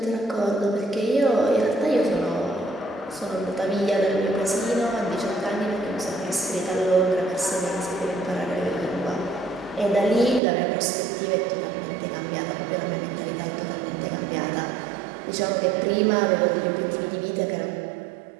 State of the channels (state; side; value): drops out; left; at 10.4 s